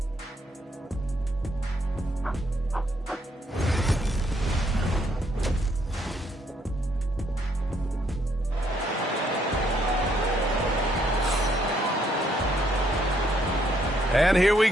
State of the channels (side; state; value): both; normal; correlation 0.71